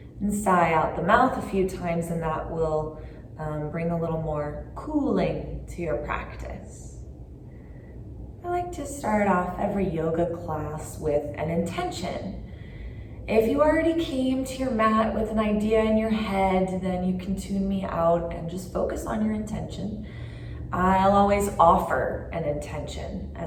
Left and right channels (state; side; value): identical; both; correlation 1.00